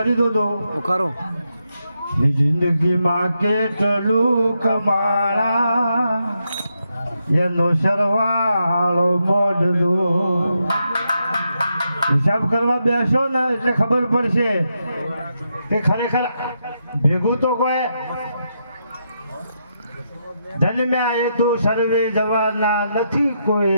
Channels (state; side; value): inverted; both; correlation -0.82